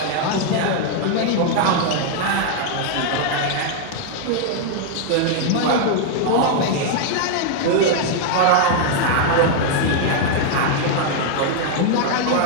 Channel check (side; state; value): both; different; correlation 0.00